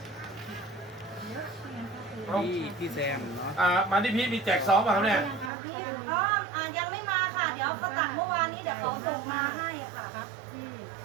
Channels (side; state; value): left; drops out; at 5.5 s